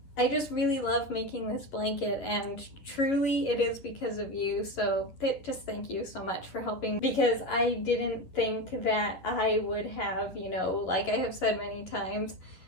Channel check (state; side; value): late; right; 11 ms